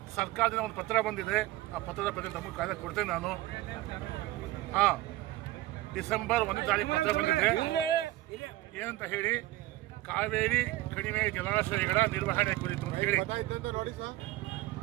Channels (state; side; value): quieter; left; 16.9 dB